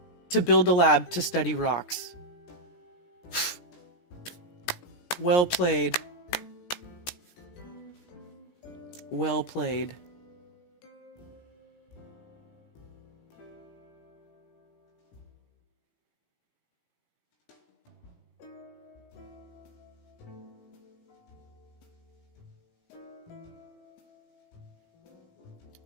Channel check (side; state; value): right; late; 17 ms